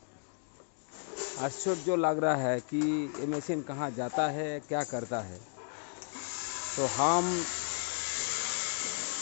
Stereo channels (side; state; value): right; silent; digital silence